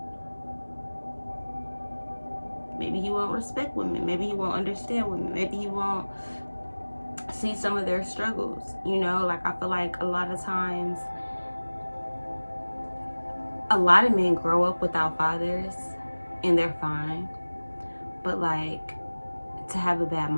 maybe he won't respect women, maybe he won't understand women, maybe he won't see some of their struggles, you know. Like, I feel like a lot of times, a lot of men grow up without fathers and they're fine, but like, to have a bad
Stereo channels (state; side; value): inverted; both; correlation -1.00